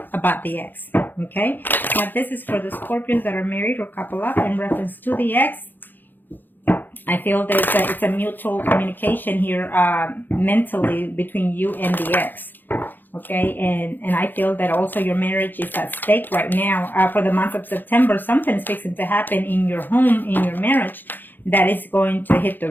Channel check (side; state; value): right; late; 0.090 ms